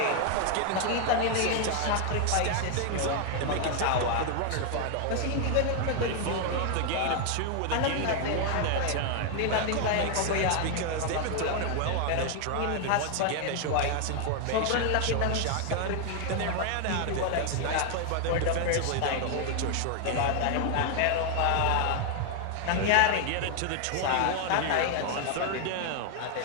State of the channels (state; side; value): different; both; correlation 0.00